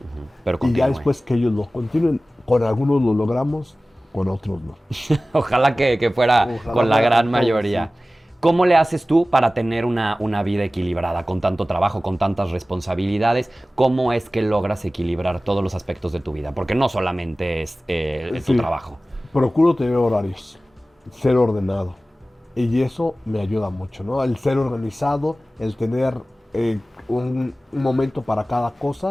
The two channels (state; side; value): normal; both; correlation 0.97